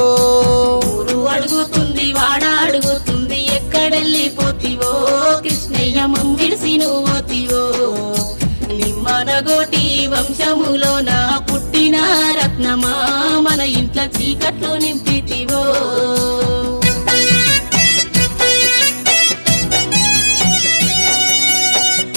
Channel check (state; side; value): inverted; both; correlation -1.00